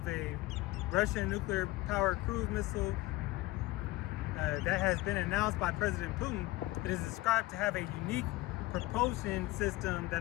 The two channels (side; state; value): right; quieter; 19.4 dB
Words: a Russian nuclear-powered cruise missile that has been announced by President Putin. It is described to have a unique propulsion system